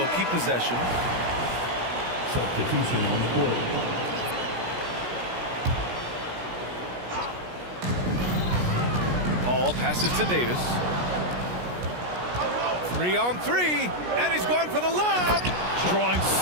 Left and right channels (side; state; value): left; late; 17 ms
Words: keep possession. Substitution on the court. Paul passes to Davis. 3-on-3, and he's going for the lob. Drawing